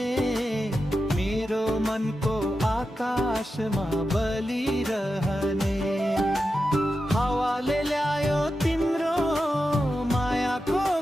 मेरो मनको आकाशमा बलिरहने। हावाले ल्यायो तिम्रो मायाको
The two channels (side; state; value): both; normal; correlation 0.90